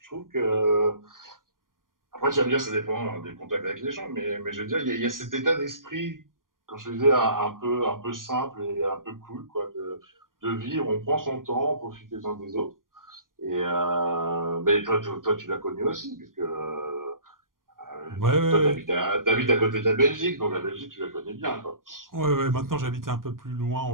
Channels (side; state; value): left; late; 0.91 ms